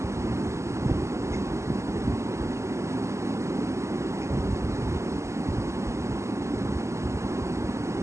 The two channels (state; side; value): late; left; 0.13 ms